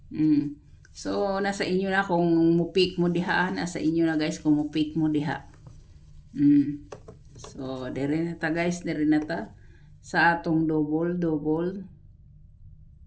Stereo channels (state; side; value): identical; both; correlation 1.00